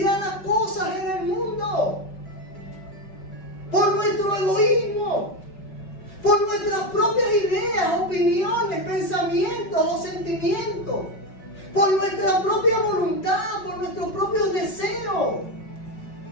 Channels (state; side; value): late; right; 5.3 ms